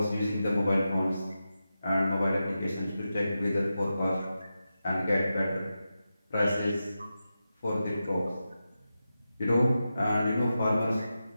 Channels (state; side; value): inverted; both; correlation -0.91